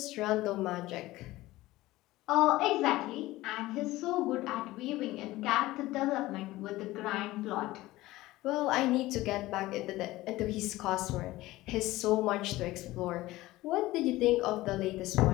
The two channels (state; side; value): quieter; right; 17.8 dB